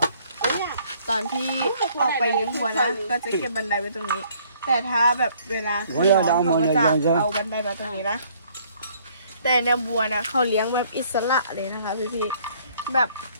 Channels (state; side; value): inverted; both; correlation -0.61